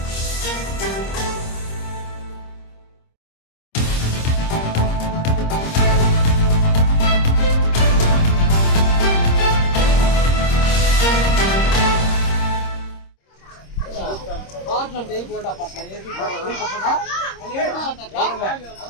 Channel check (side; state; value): right; late; 26 ms